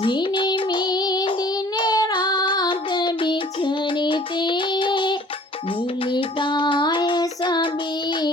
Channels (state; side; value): normal; both; correlation 0.52